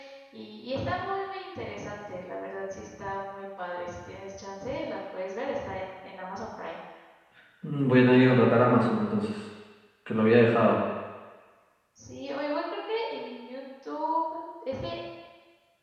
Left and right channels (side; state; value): both; identical; correlation 1.00